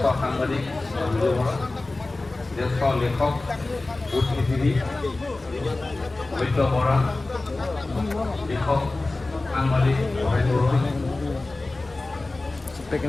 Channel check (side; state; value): right; quieter; 3.1 dB